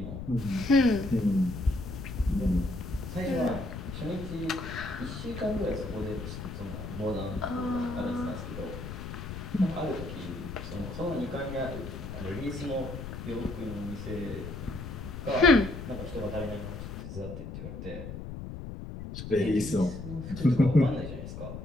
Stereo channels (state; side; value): noise; left; rumble, 8 dB below the sound